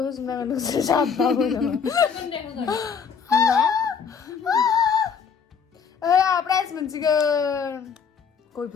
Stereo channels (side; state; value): right; quieter; 6.4 dB